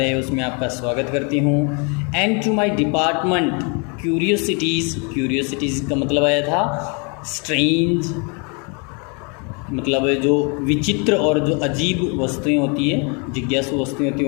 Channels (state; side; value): quieter; right; 34.6 dB